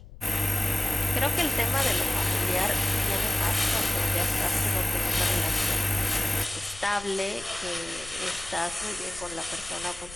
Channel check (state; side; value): noise; left; rumble, 18 dB below the sound